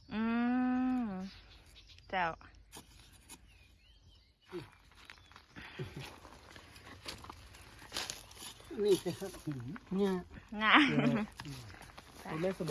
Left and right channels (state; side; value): identical; both; correlation 1.00